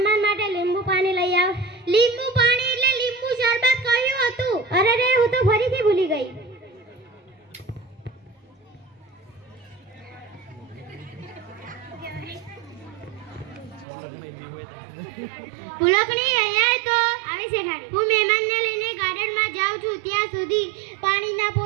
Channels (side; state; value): left; drops out; at 13.9 s